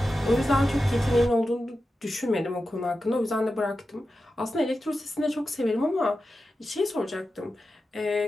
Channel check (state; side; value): normal; both; correlation 0.91